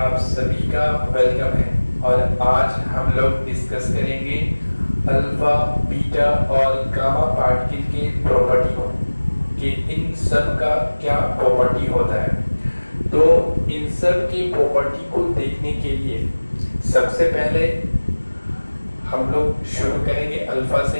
सभी का वेलकम है और आज हम लोग डिस्कस करेंगे अल्फा, बीटा और गामा पार्टिकल के प्रॉपर्टी को कि इन सब का क्या प्रॉपर्टी होता है। तो इन सब की प्रॉपर्टी को देखने के लिए सबसे पहले हम लोग शुरू करेंगे अल्फा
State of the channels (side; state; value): both; inverted; correlation -1.00